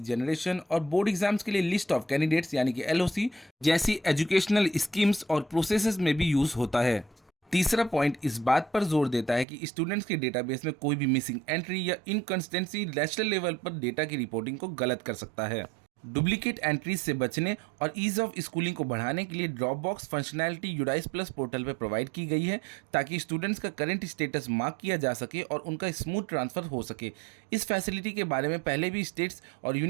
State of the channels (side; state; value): left; drops out; at 9.5 s